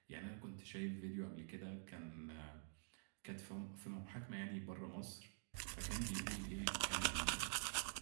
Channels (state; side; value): silent; left; digital silence